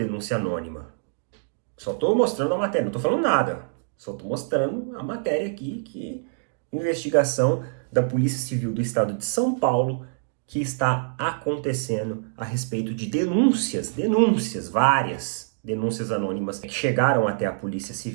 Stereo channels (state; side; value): silent; left; digital silence